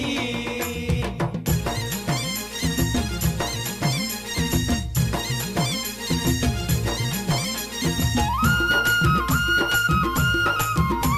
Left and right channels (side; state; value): both; identical; correlation 1.00